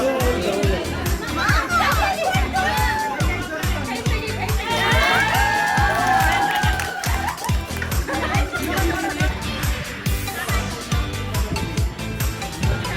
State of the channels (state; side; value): identical; both; correlation 1.00